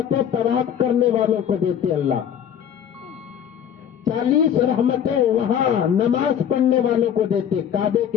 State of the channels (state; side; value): quieter; right; 9.0 dB